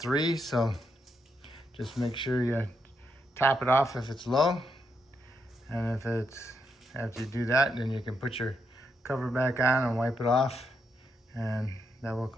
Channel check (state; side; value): normal; both; correlation 0.80